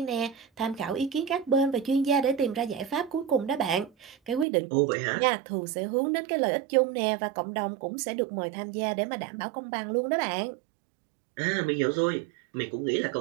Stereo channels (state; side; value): drops out; left; at 4.5 s